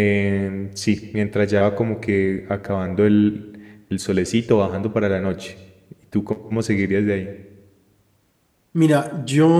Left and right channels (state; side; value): identical; both; correlation 1.00